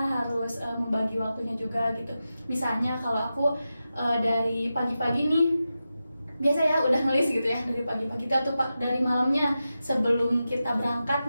membagi waktunya juga gitu. Misalnya kalau aku dari pagi-pagi nih biasa ya udah nulis gitu ya dari pagi-pagi atau dari malamnya sebelum kita berangkat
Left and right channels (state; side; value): inverted; both; correlation -0.91